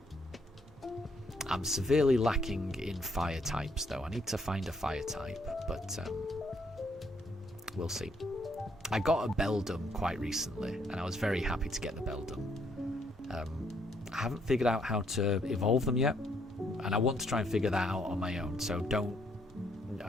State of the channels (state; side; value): normal; both; correlation 0.70